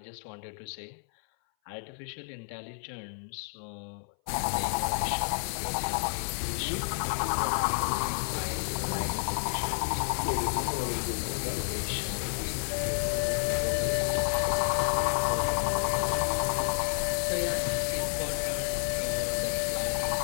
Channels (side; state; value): right; silent; 58 dB below the other